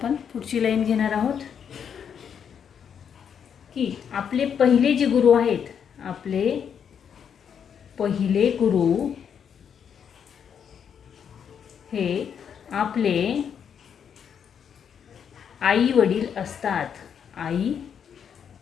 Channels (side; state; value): right; quieter; 7.8 dB